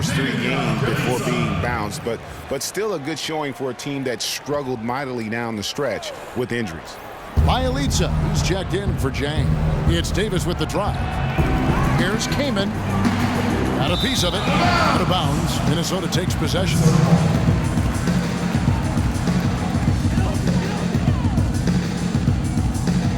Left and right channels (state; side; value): identical; both; correlation 1.00